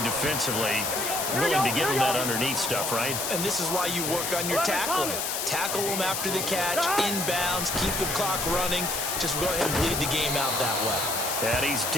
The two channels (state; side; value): noise; left; hiss, 2 dB below the sound